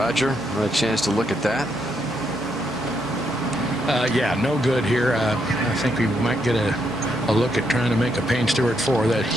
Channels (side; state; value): both; normal; correlation 0.77